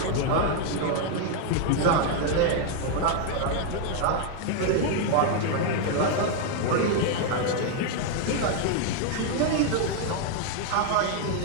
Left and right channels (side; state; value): both; different; correlation 0.00